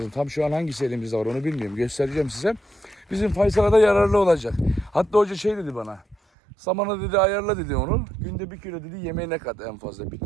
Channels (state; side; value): drops out; left; at 6.2 s